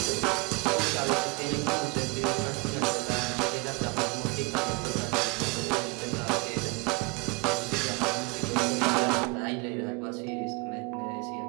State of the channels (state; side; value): quieter; left; 28.8 dB